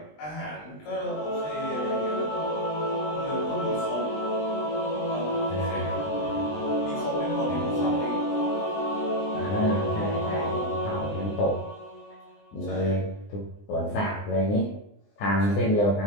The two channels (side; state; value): right; late; 20 ms